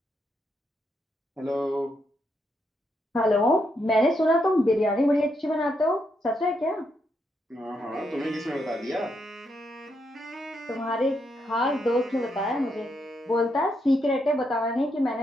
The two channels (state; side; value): normal; both; correlation 0.79